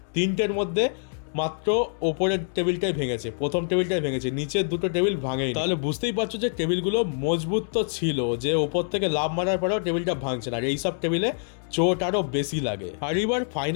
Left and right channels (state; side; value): silent; right; digital silence